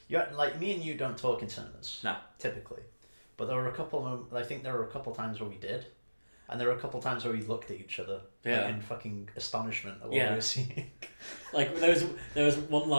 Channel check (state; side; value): inverted; both; correlation -1.00